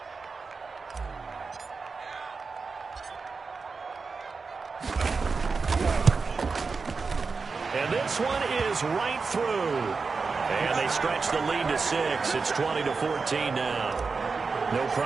And this one is right through. And they stretch the lead to 6. It's 20-14 now. No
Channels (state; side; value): quieter; left; 4.6 dB